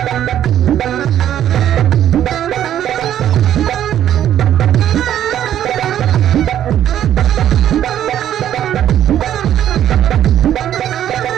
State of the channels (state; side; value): quieter; left; 10.9 dB